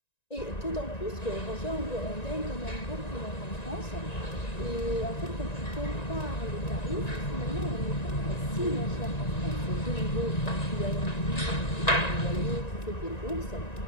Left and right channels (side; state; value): right; late; 1.9 ms